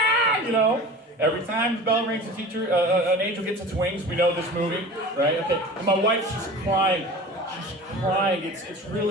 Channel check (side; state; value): both; normal; correlation 0.37